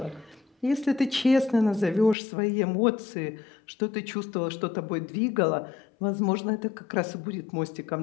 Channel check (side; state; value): right; drops out; at 2.1 s